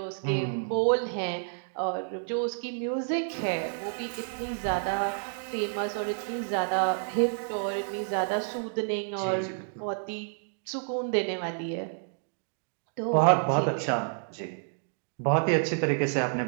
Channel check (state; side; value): silent; left; digital silence